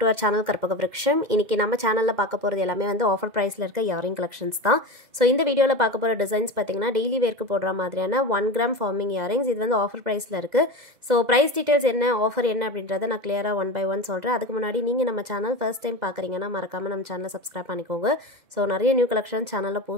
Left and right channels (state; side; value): late; left; 2.0 ms